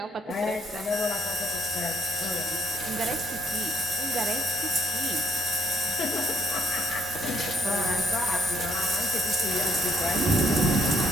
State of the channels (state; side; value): normal; both; correlation 0.70